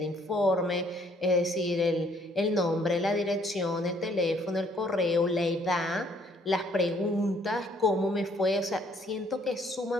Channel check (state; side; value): normal; both; correlation 0.64